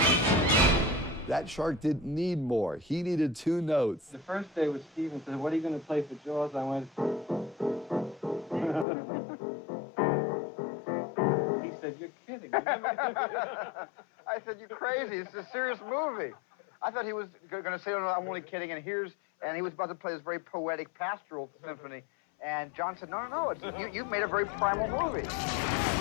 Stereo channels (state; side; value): drops out; right; at 8.8 s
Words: That shark didn't need more. He needed 2 notes. The first day with Steven said, what are you going to play for Jaws? I went... He said, you're kidding. I said, you're crazy. It's a serious movie. I thought he was going to say, oh, no, I'm only kidding, and he was about to play this very poetic pastoral symphony. And John said, no, no, no, you've made a very primal movie.